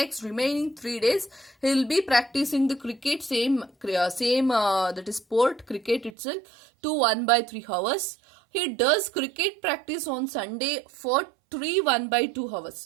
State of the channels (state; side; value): drops out; left; at 6.1 s